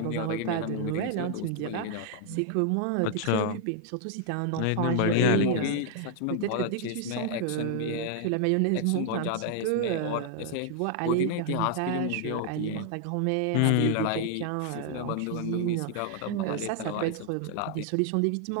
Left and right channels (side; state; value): both; different; correlation 0.00